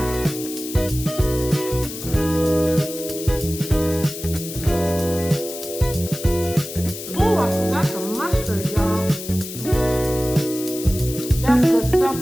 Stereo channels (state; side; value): noise; left; hiss, 10 dB below the sound